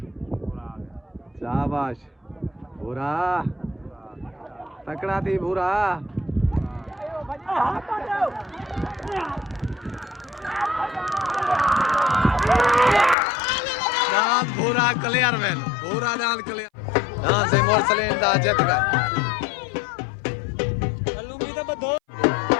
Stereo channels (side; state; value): right; drops out; at 13.2 s